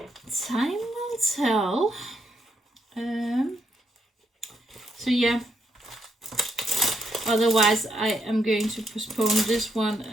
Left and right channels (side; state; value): both; normal; correlation 0.77